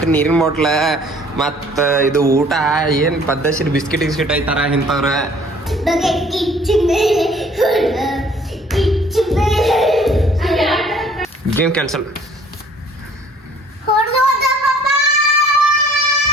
ನೀರಿನ ಬಾಟ್ಲ, ಮತ್ತ ಇದು ಊಟ ಏನ್ ಪದ್ದಸಿರ್ ಬಿಸ್ಕಿಟ್ ಗಿಸ್ಕಿಟ್ ಐತಾರ ಇಂಥವ್ರ. Game cancel.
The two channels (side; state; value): both; normal; correlation 0.56